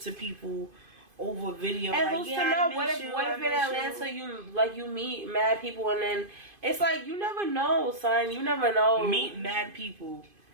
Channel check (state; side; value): late; left; 2.5 ms